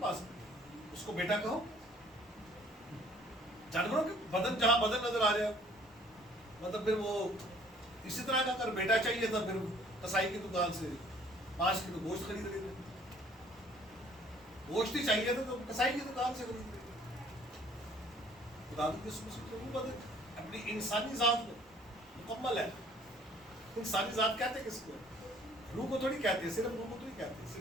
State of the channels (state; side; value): normal; both; correlation 0.57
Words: ہے، اس کو بیٹا کہو، جانوروں کے بدن جہاں بدن نظر آ جائے مطلب پھر وہ اسی طرح کا اگر بیٹا چاہیے تھا پھر کسائی کی دکان سے 5 کلو گوشت خرید لیتے، گوشت ہی چاہیے تھا تو کسائی کی دکان سے خرید لیتے۔ خدا کی قسم سے روح بدن اپنی انسانی ذات میں مکمل ہے۔ انسانی ذات کہتے کس کو؟ روح کو تھوڑی کہتے ہیں، صرف روح کو تو نہیں کہتے،